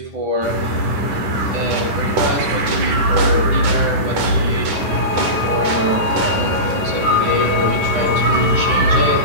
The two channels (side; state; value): left; late; 10 ms